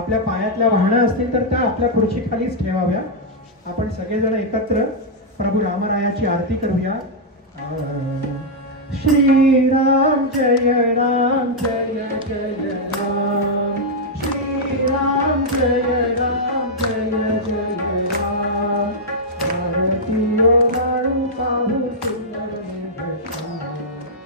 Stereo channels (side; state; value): both; normal; correlation -0.05